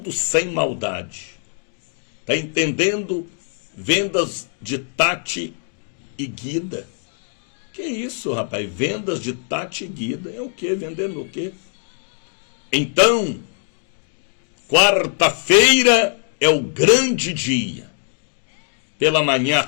sem maldade. Está entendendo? Vendas de Tati e Guida. Que isso, rapaz? Vendas de Tati e Guida. É o quê? Vendendo o quê? Então, quarta-feira é o grande dia. Pela manhã, à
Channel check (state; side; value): silent; right; 61 dB below the other